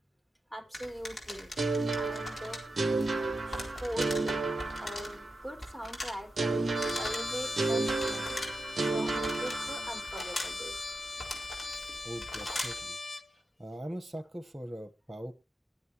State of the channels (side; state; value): both; normal; correlation 0.89